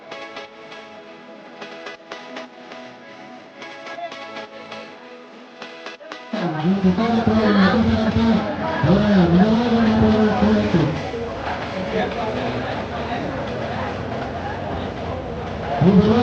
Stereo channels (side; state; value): both; identical; correlation 1.00